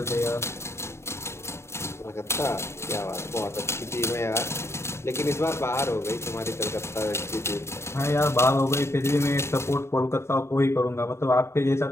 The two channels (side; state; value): right; late; 0.13 ms